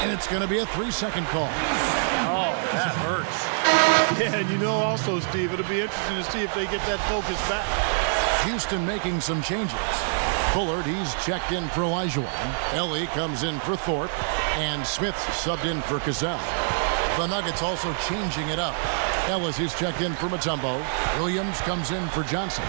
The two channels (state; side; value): silent; left; digital silence